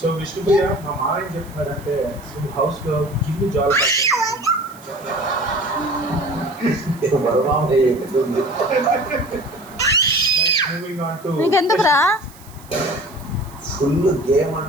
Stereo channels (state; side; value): noise; right; hiss, 23 dB below the sound